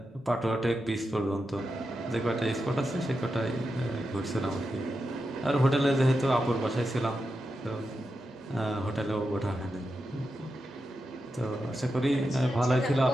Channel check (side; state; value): both; normal; correlation 0.88